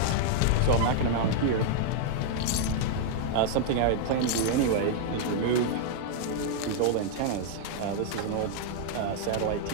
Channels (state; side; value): different; both; correlation -0.01